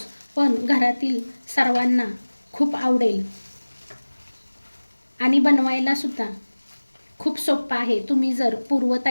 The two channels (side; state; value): both; inverted; correlation -1.00